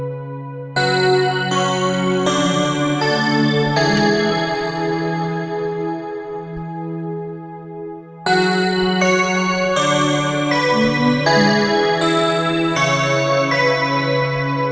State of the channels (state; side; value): identical; both; correlation 1.00